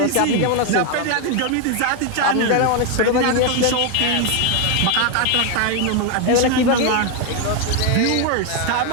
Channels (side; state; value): both; different; correlation 0.01